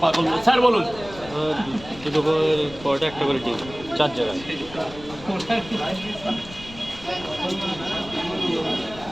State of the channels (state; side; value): noise; left; rumble, 17 dB below the sound